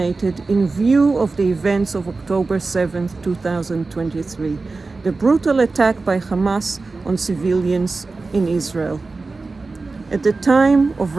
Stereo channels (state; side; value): quieter; left; 3.8 dB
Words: in view of the events of October 7th, 2023, the brutal attack by Hamas on civilians in Israel. At the time of